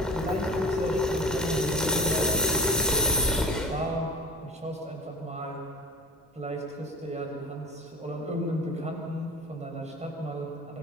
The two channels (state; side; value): normal; both; correlation 0.38